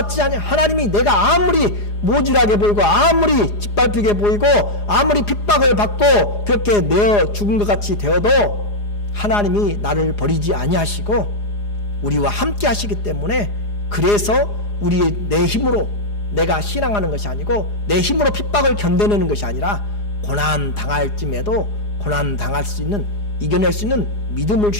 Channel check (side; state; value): right; late; 4.9 ms